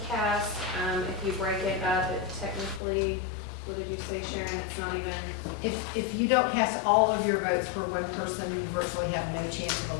cast. If you break it up, it technically, what did you say, Sharon? It's not even, If you don't cast all of your votes for one person, you virtually have no chance of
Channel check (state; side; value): drops out; right; at 2.8 s